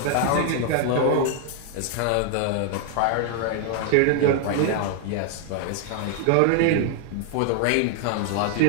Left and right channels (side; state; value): both; different; correlation 0.00